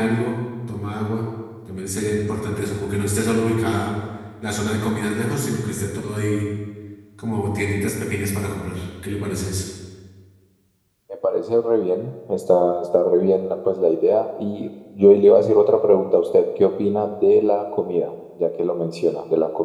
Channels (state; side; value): identical; both; correlation 1.00